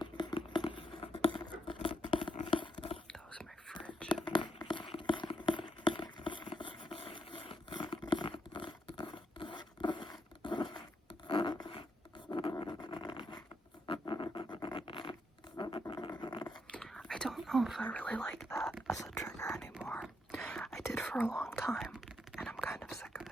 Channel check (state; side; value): normal; both; correlation 0.78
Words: know if I really like that as a trigger anymore. I did for a long time, and I'm kind of sick of